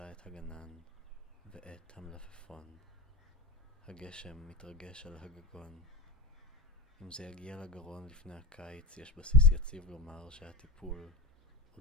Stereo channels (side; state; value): both; normal; correlation 0.27